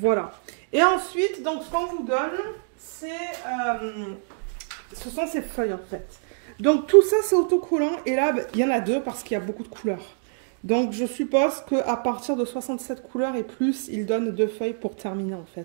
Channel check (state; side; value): silent; left; digital silence